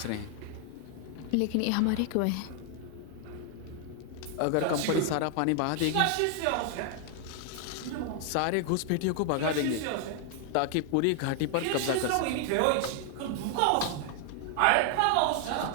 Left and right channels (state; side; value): different; both; correlation 0.00